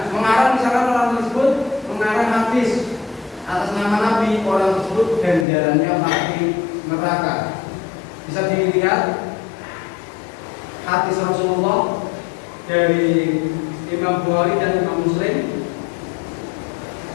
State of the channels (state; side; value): drops out; right; at 5.5 s